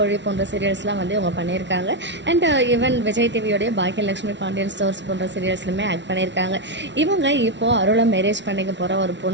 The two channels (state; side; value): late; left; 0.52 ms